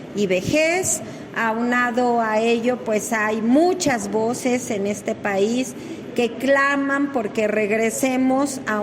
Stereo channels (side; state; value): both; identical; correlation 1.00